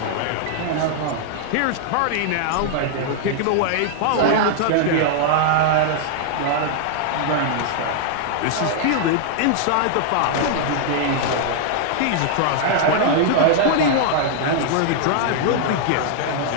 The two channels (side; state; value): both; different; correlation -0.01